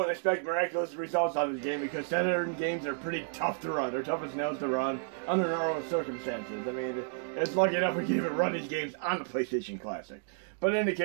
expect miraculous results on this game because Saturn games are pretty tough to run. They're tough as nails to run under normal circumstances. I mean, it's lucky enough we can even run these games on the PlayStation Classic. But in any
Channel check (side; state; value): left; silent; digital silence